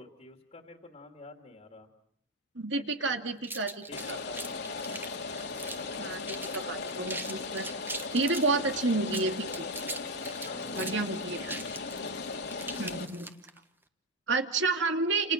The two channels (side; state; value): both; normal; correlation 0.09